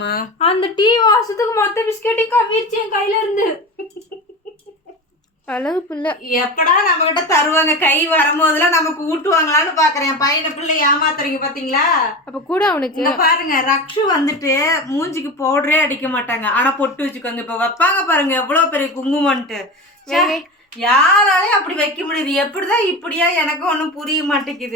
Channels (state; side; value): normal; both; correlation 0.27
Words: அந்த டீ வாசத்துக்கு மொத்த பிஸ்கெட்டையும் கவிர்ச்சி என் கையில இருந்து. அழகு பிள்ளை. எப்படா நம்ம கிட்ட தருவாங்க, கை வரும்போதெல்லாம் நமக்கு ஊட்டுவாங்களான்னு பாக்குறேன். பையனை பிள்ளை ஏமாத்துறீங்க பாத்தீங்களா. அப்ப கூட அவனுக்கு பாருங்க ரக்ஷு வந்துட்டு மூஞ்சிக்கு பவுடரே அடிக்க மாட்டாங்க, ஆனா பொட்டு வச்சுக்கோங்க. இப்ப வைப்பாங்க பாருங்க எவ்வளவு பெரிய குங்குமன்ட்டு. யாராலையும் அப்படி வைக்க முடியுது? எப்படிதான் இப்படியா எனக்கு ஒண்ணும் புரிய